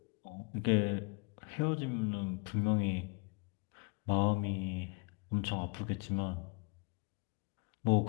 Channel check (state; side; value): quieter; right; 32.7 dB